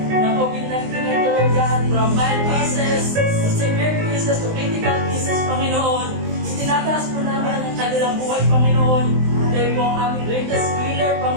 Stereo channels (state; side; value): late; left; 19 ms